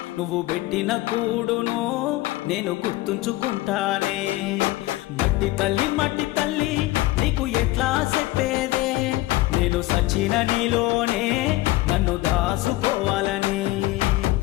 నువ్వు పెట్టిన కూడును నేను గుర్తుంచుకుంటానే. మట్టి తల్లి నీకు ఎట్లా చెప్పేదే, నేను సచిన నీలోనే నన్ను దాసుకోవాలని.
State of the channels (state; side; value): quieter; right; 18.5 dB